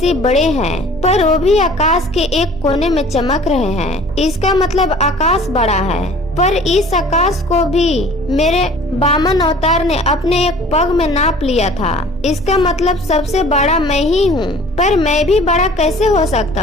बड़े हैं, पर वो भी आकाश के एक कोने में चमक रहे हैं। इसका मतलब आकाश बड़ा है, पर इस आकाश को भी मेरे वामन अवतार ने अपने एक पग में नाप लिया था। इसका मतलब सबसे बड़ा मैं ही हूँ, पर मैं भी बड़ा कैसे हो सकता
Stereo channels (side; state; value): both; normal; correlation 0.48